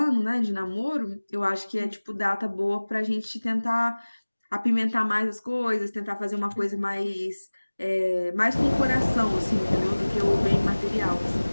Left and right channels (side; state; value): both; inverted; correlation -1.00